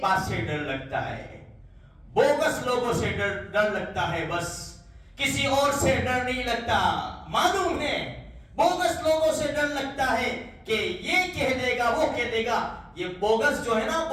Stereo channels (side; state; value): both; identical; correlation 1.00